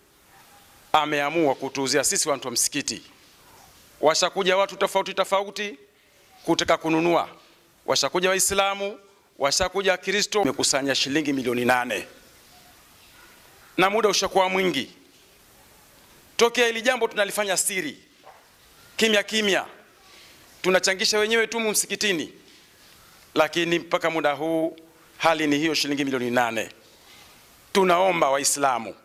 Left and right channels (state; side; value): identical; both; correlation 1.00